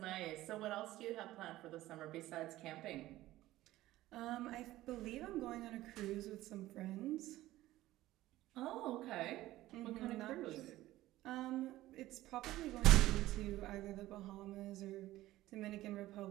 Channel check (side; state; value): left; quieter; 16.0 dB